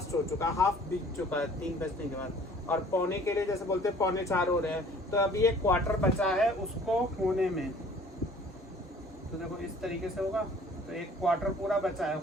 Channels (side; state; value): both; normal; correlation 0.52